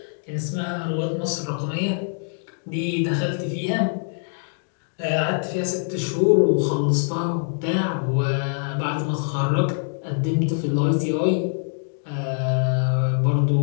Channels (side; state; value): right; silent; digital silence